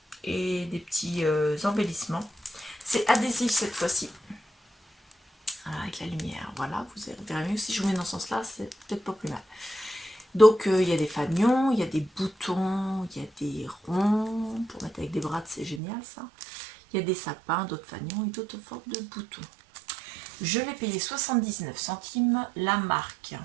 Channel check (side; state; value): left; drops out; at 15.8 s